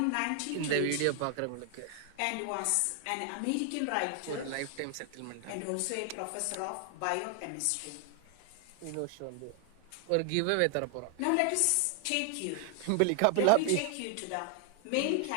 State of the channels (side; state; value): both; different; correlation 0.00